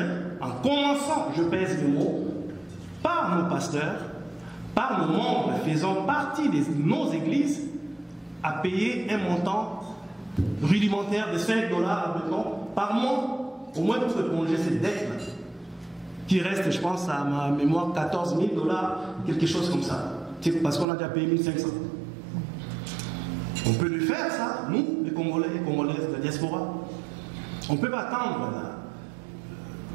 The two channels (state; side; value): drops out; left; at 20.9 s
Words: en commençant, je pèse les mots, par nos pasteurs, par nos membres faisant partie de nos églises, à payer un montant rudimentaire de 5 $, par mois, au moins pour éponger cette dette-là, qui reste, je pense, à ma mémoire, 14 000 $, quelque chose comme ça. Parce qu'on a déjà payé 1500. On peut le faire, ça, nous, les Congolais et Congolaises de la diaspora. On ne peut pas attendre